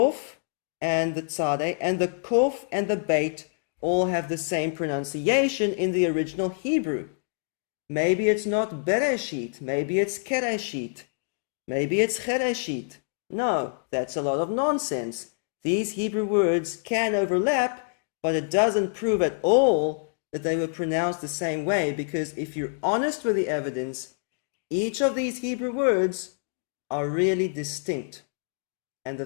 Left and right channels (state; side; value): silent; right; digital silence